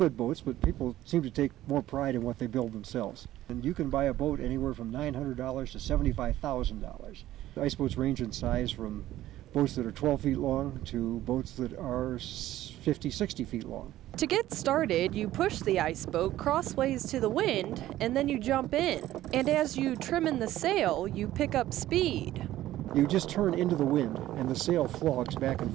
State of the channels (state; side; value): quieter; left; 14.3 dB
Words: boats, but people seem to take more pride in what they build themselves. And you can buy a boat anywhere from $900 to $75,000. Iceboats range in size from boats that are 12 feet long to boats that are 50, 60 feet long. To get started, you push the iceboat crossways to the wind, and then you jump in. And as you trim in the sail, you pick up speed. You just turn into the wind, and the sail flogs back and